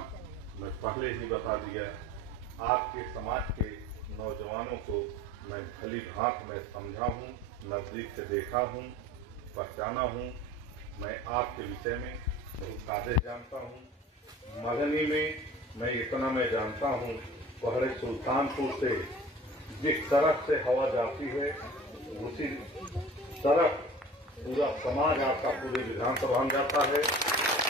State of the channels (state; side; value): normal; both; correlation 0.42